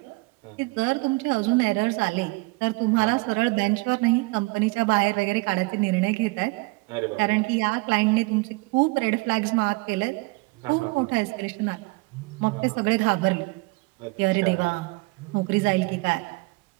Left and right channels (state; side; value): quieter; left; 26.1 dB